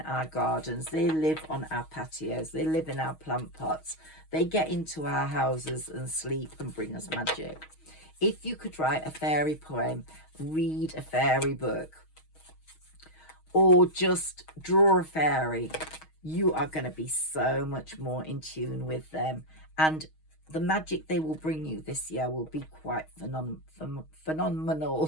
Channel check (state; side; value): late; right; 6.3 ms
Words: our gardens. They live on our patios. They live in our plant pots. They get into our houses and sleep and bring us magic. If you could write a fairy poem, read a fairy book, or just draw a fairy, you are going to be so much more in tune with them. And the magic they will bring you this year will be quite